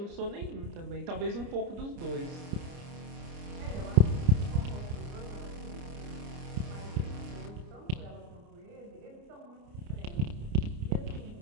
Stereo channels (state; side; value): late; left; 29 ms